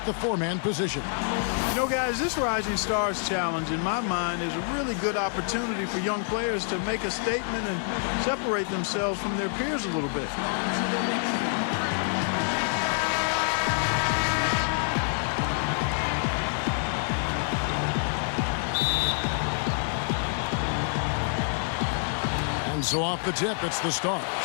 the four-man position. You know, guys, this Rising Stars Challenge, in my mind, is a really good opportunity for young players to make a statement and separate themselves from their peers a little bit. And so off the tip, it's the Stars.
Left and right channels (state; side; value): silent; right; 60 dB below the other